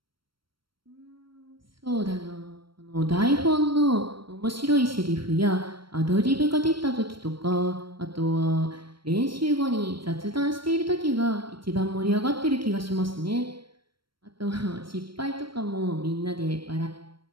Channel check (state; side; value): late; left; 0.74 ms